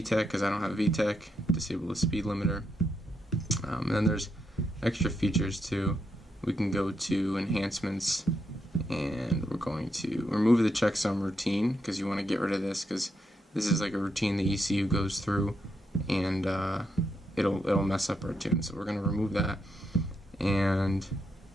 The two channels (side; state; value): both; normal; correlation 0.81